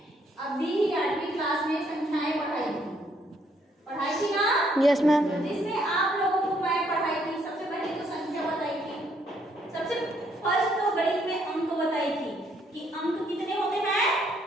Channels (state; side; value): normal; both; correlation 0.70